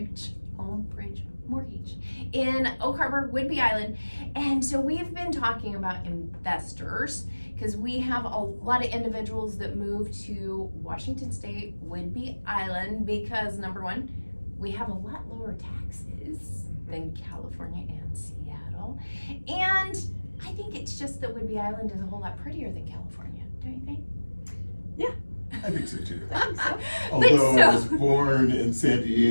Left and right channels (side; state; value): both; inverted; correlation -1.00